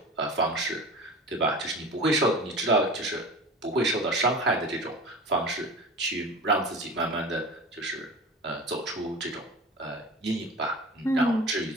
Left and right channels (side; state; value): both; normal; correlation 0.35